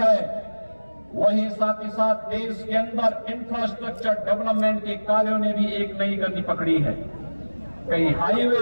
वहीं साथ ही साथ देश के अंदर इंफ्रास्ट्रक्चर डेवलपमेंट के कार्यों ने भी एक नई गति पकड़ी है। कहीं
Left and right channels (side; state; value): both; inverted; correlation -1.00